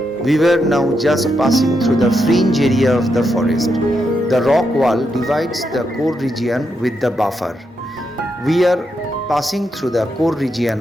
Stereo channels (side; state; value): both; normal; correlation 0.82